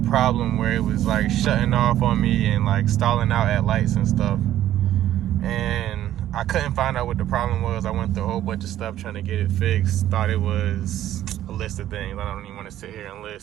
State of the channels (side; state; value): left; quieter; 12.5 dB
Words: where it was like shutting off on me and like stalling out at lights and stuff. And I couldn't find out what the problem was. I went through a whole bunch of stuff trying to get it fixed. Thought it was a list of things. I don't even want to sit here and